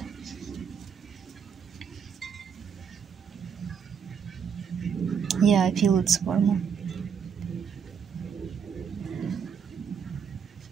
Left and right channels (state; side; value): quieter; left; 7.0 dB